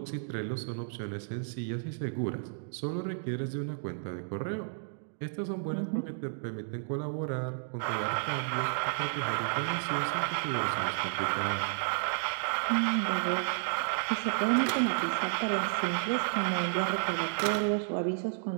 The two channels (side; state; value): left; silent; digital silence